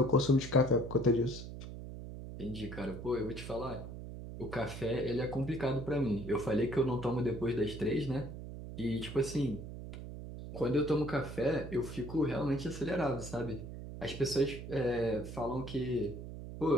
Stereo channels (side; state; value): right; noise; hum, 10 dB below the sound